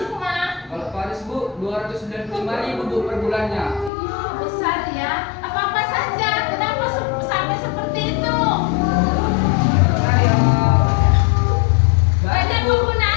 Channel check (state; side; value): drops out; right; at 3.9 s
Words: Kalau Paris, Bu, 295.000, Bu, per bulannya. Iya, besar ya. Apa-apa saja? Kenapa sampai seperti itu? Banyak